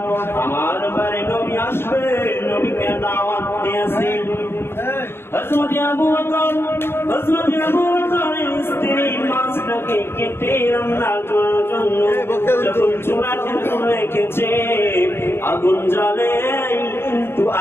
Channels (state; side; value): late; right; 0.11 ms